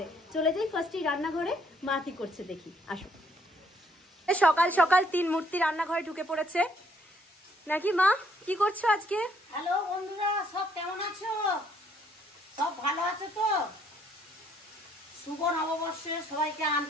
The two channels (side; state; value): both; normal; correlation 0.67